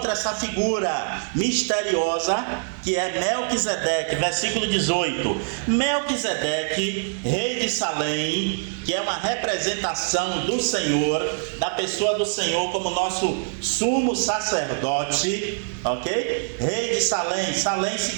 essa figura misteriosa que é Melquisedeque, versículo 18. Melquisedeque, rei de Salém, que é uma representação do Senhor, da pessoa do Senhor como nosso sumo sacerdote, ok? Rei de Salém. Salém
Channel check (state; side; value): silent; left; digital silence